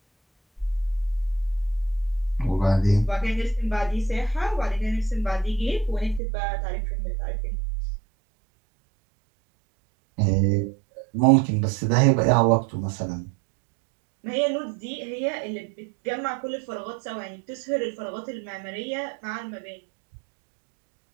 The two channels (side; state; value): left; drops out; at 6.2 s